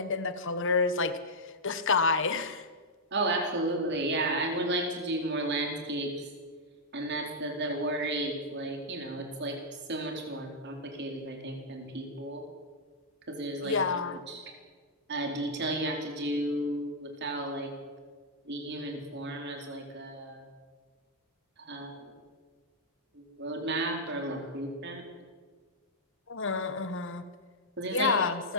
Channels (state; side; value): normal; both; correlation -0.06